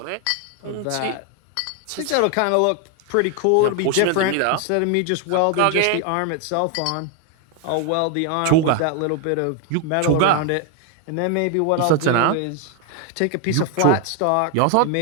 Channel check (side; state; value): both; different; correlation 0.01